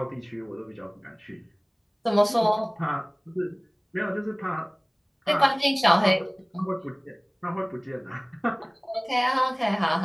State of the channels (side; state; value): both; identical; correlation 1.00